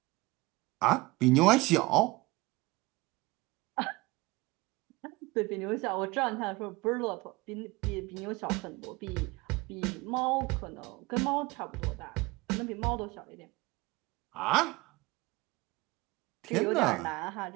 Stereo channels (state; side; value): quieter; left; 22.7 dB